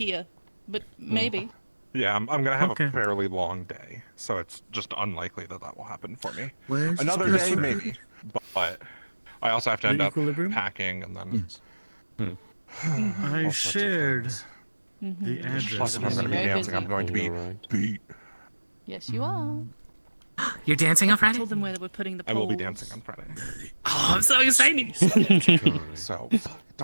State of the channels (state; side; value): inverted; both; correlation -1.00